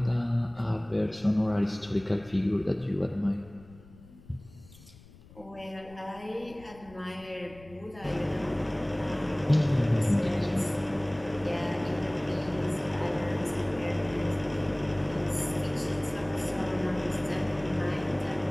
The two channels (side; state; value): left; noise; rumble, 22 dB below the sound